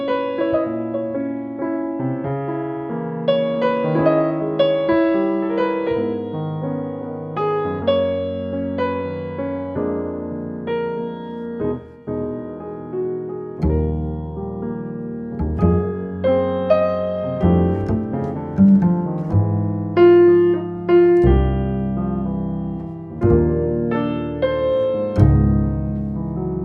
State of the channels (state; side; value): identical; both; correlation 1.00